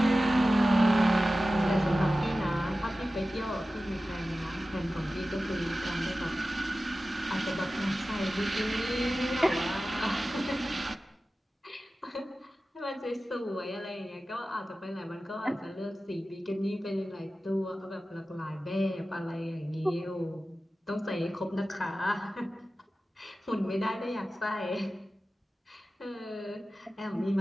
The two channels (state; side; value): normal; both; correlation 0.95